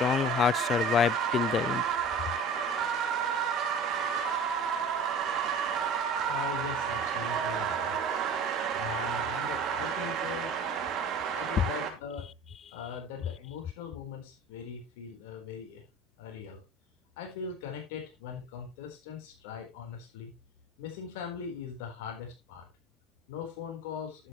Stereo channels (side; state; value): both; normal; correlation 0.40